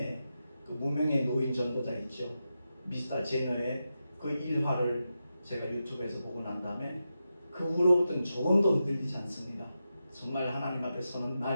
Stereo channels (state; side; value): inverted; both; correlation -0.89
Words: 그 무명의 노인 전도자 있죠. 미스터 제너의 그 일화를 제가 유튜브에서 보고 난 다음에 그 후로부터는 조금도 흔들리지 않습니다. 정말 하나님 앞에 서는